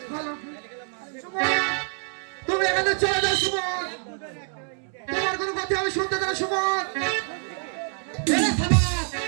তুমি এখানে চলে যাও সুমন, তোমার কোনো কথা আমি শুনতে দেবো সুমন।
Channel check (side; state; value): left; silent; 61 dB below the other